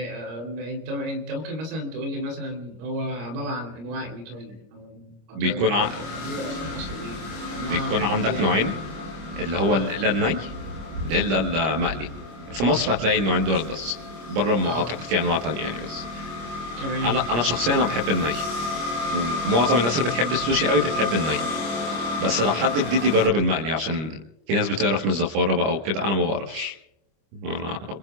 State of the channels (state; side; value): late; left; 25 ms